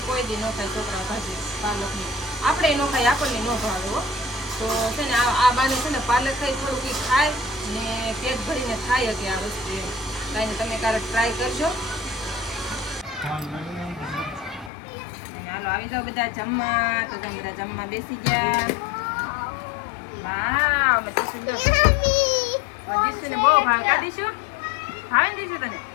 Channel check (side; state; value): right; drops out; at 14.7 s